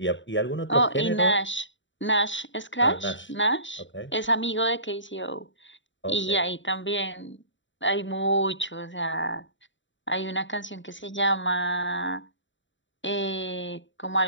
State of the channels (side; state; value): right; late; 0.54 ms